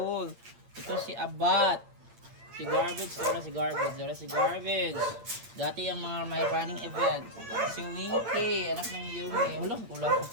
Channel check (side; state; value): left; late; 8.7 ms